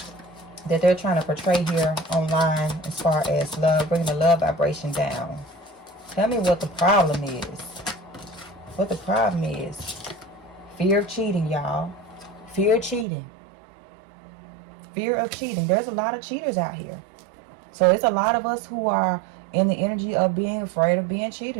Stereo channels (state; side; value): drops out; left; at 13.1 s